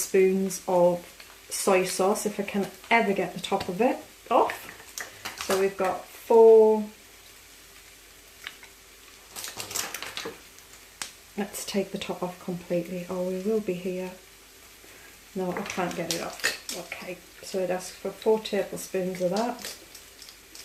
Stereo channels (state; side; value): identical; both; correlation 1.00